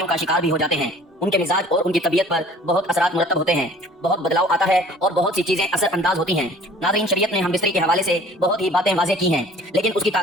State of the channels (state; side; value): normal; both; correlation 0.50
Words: کا شکار بھی ہو جاتے ہیں۔ ان کے مزاج اور ان کی طبیعت پر بہت اثرات مرتب ہوتے ہیں، بہت بدلاؤ آتا ہے اور بہت سی چیزیں اثر انداز ہوتی ہیں۔ ناظرین، شریعت نے ہم بستری کے حوالے سے بہت ہی باتیں واضح کی ہیں، لیکن اس کی